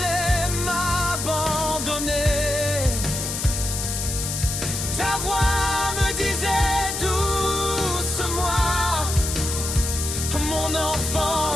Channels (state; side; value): noise; left; hiss, 4 dB below the sound